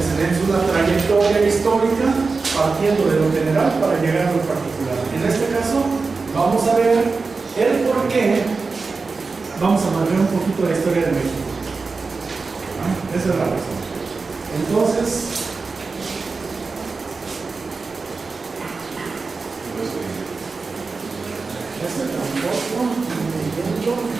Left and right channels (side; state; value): left; quieter; 4.3 dB